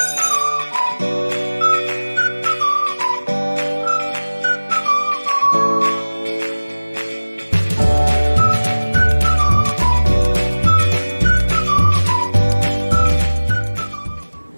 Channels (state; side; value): inverted; both; correlation -1.00